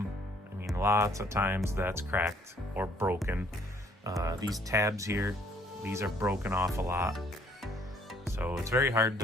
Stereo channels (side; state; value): both; normal; correlation 0.62